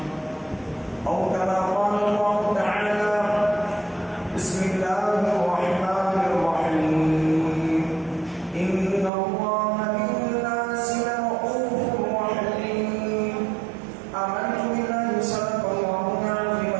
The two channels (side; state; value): left; drops out; at 9.1 s